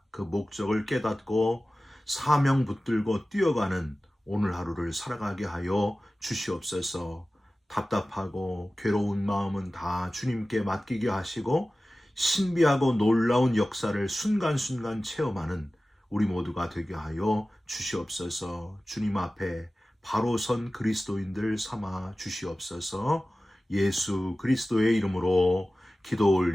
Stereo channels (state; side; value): normal; both; correlation 0.96